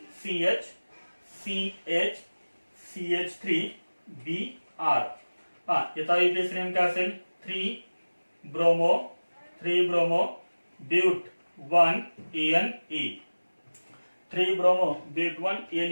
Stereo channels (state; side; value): inverted; both; correlation -1.00